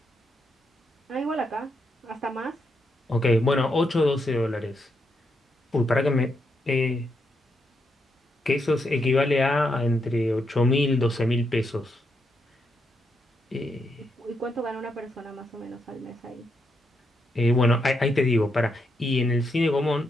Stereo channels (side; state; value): both; normal; correlation 0.80